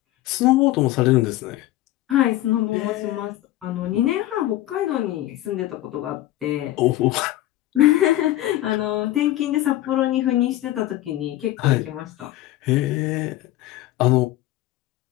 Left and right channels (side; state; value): right; quieter; 15.3 dB